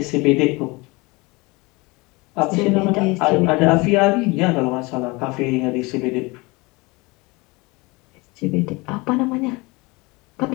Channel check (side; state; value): right; quieter; 25.0 dB